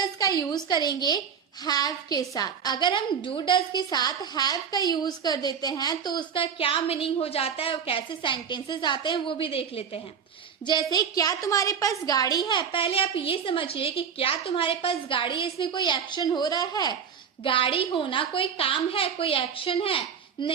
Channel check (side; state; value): left; quieter; 7.2 dB